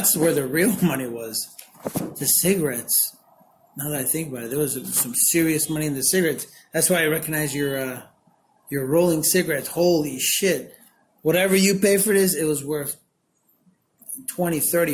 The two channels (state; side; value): identical; both; correlation 1.00